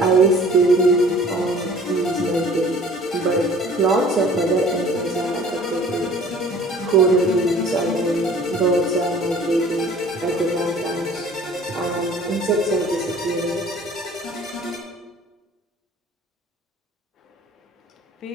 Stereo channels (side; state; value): both; normal; correlation 0.50